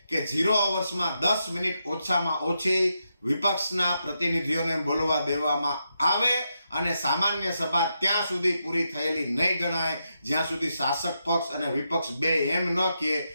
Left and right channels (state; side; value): inverted; both; correlation -0.84